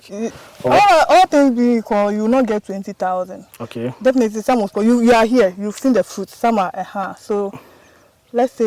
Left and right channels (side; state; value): both; identical; correlation 1.00